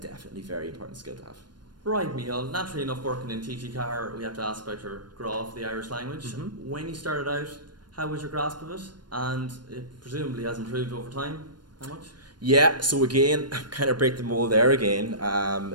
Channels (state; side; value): late; left; 0.71 ms